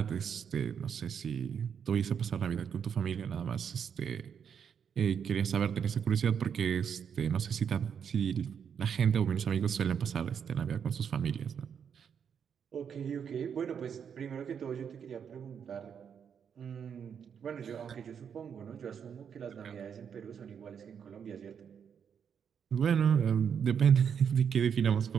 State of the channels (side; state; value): left; quieter; 7.5 dB